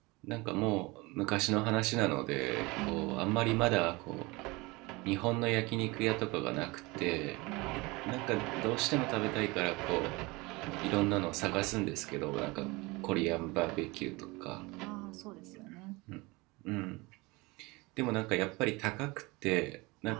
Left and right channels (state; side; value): quieter; left; 24.1 dB